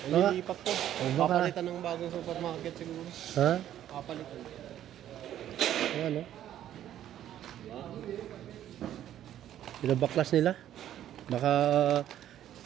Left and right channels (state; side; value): quieter; left; 11.5 dB